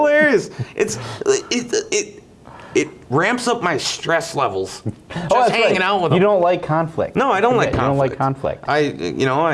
It ramps up my stress levels. Just hanging out with them. You don't like conflict. No, I don't like conflict. You don't like conflict.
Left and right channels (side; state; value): both; identical; correlation 1.00